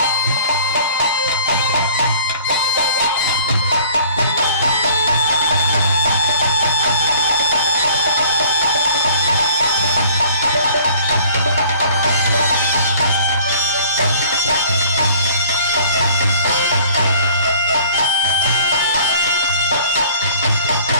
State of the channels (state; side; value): inverted; both; correlation -0.52